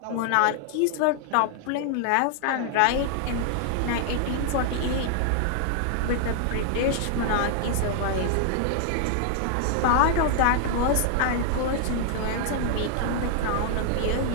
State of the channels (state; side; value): different; both; correlation 0.00